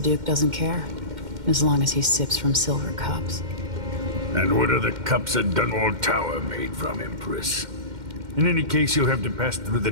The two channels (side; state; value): left; late; 2.1 ms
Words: doesn't care, as long as he sips from silver cups. And what are the cups at Dunwall Tower made from, Empress? In any case, you'll have to pass through the